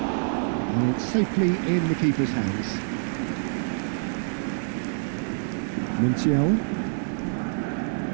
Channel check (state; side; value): silent; left; 61 dB below the other